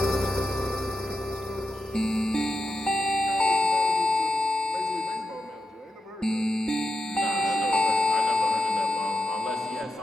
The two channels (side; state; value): both; normal; correlation 0.88